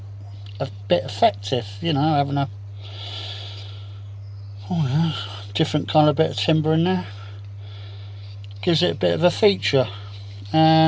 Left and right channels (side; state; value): both; identical; correlation 1.00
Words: a bit effective, you know, having a different colour bit of timber in there. Gives it a bit of a feature.